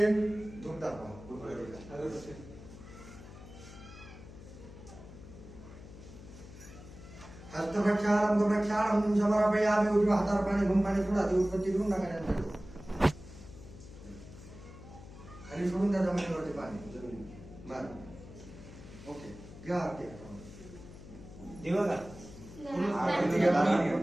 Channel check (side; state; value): left; noise; hum, 16 dB below the sound